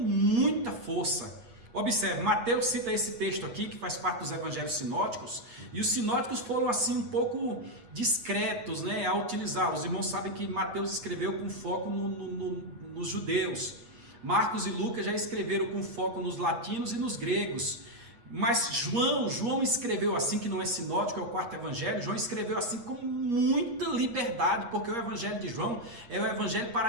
força. Observe, Mateus cita esse texto aqui, que faz parte dos evangelhos sinóticos, e os sinóticos foram assim um pouco discretos, né, a utilizar. Os irmãos sabem que Mateus escreveu com foco nos judeus, Marcos e Lucas já escreveram com foco nos latinos e nos gregos, mas João escreveu assim, que não é sinótico, é o quarto evangelho. João escreveu assim com muita liberdade, porque o evangelho de João é o evangelho para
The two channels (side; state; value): left; late; 8.5 ms